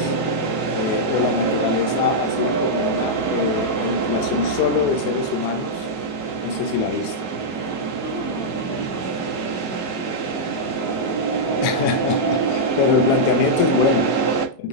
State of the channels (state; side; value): late; right; 22 ms